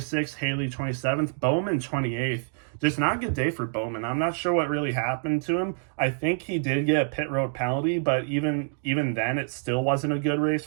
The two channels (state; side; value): silent; left; digital silence